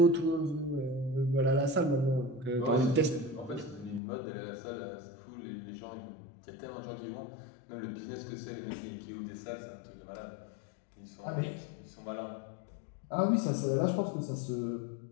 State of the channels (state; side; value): drops out; right; at 4.0 s